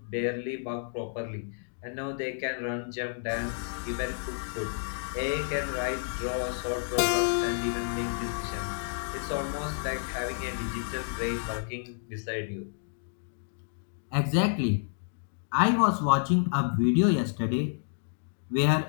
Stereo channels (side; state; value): right; silent; digital silence